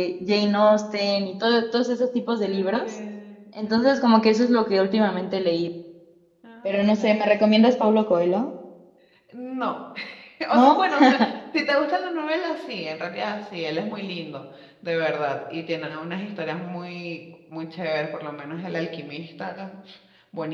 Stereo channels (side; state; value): both; identical; correlation 1.00